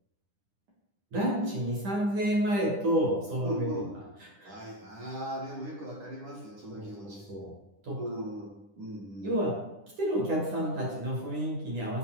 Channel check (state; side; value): late; left; 10 ms